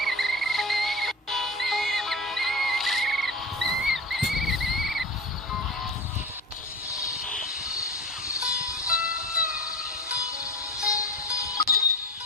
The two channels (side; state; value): both; normal; correlation 0.29